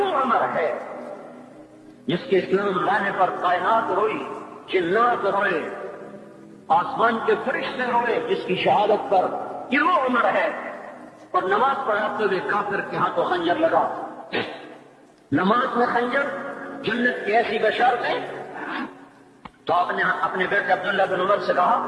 عمر ہے جس کے اسلام لانے پر کائنات روئی، جنات روئے، آسمان کے فرشتے روئے جس کی شہادت پر. یہ وہ عمر ہے. اور نماز پڑھاتے ہوئے کافر کے ہاتھوں خنجر لگا. نماز میں خنجر، جنت کی ایسی بشارتیں. تو آپ نے اپنے بیٹے عبداللہ بن عمر سے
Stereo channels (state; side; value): identical; both; correlation 1.00